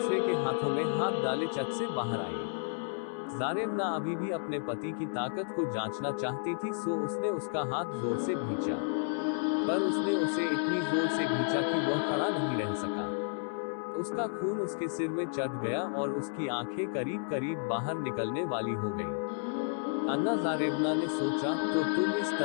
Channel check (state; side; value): silent; right; 57 dB below the other